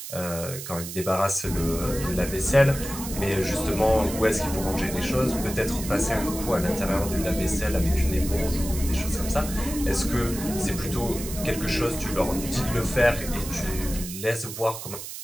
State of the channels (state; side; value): noise; right; hiss, 9 dB below the sound